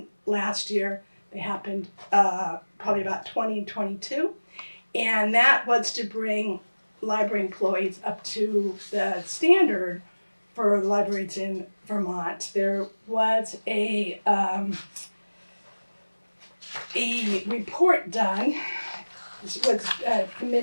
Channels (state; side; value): inverted; both; correlation -1.00